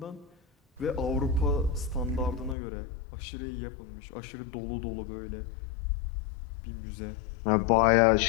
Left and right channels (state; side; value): drops out; right; at 2.6 s